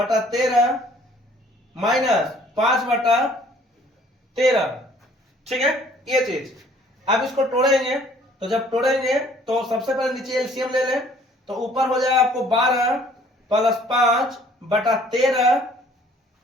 माइनस 5/13। ठीक है, ये चीज। अब इसको तोड़ेंगे, तो जब तोड़ेंगे तो सबसे पहले नीचे एलसीएम ले लें, तो ऊपर हो जाएगा आपको 12 प्लस 5/13,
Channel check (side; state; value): both; normal; correlation 0.57